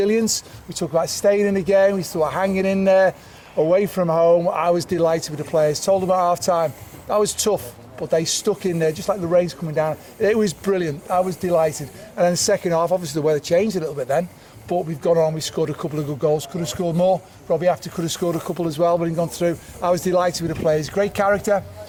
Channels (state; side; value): identical; both; correlation 1.00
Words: We talked about staying in the game. We talked about hanging in there. Away from home, I was delighted with the players. Told them at half-time, that was tough, but they stuck in there, just like the rain's coming down. It was brilliant. I was delighted. And then the second half, obviously the weather changed a little bit then, but we've gone on, we scored a couple of good goals. Could have scored more. 𝗬𝗢𝗡𝗡𝗘𝗥 could have scored a couple as well, but he gone through. I was delighted with the players. Great character,